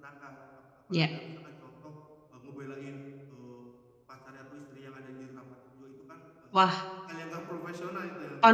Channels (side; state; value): both; identical; correlation 1.00